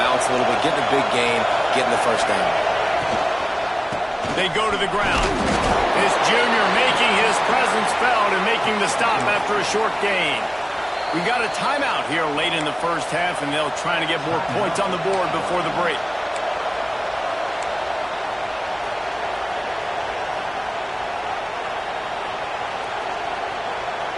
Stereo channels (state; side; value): identical; both; correlation 1.00